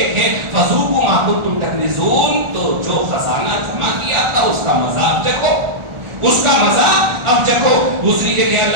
تھے. فذوقوا ما كنتم تكنزون، تو جو خزانہ جمع کیا تھا اس کا مزہ اب چکھو، اس کا مزہ اب چکھو. دوسری جگہ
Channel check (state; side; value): late; left; 1.4 ms